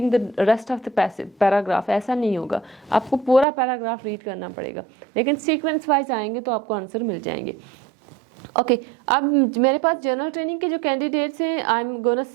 the rest of the paragraph. ऐसा नहीं होगा, आपको पूरा पैराग्राफ रीड करना पड़ेगा, लेकिन सीक्वेंस वाइज आएंगे तो आपको आंसर मिल जाएंगे. ओके, अब मेरे पास जनरल ट्रेनिंग के जो कैंडिडेट्स हैं, I am gonna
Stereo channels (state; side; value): drops out; left; at 3.5 s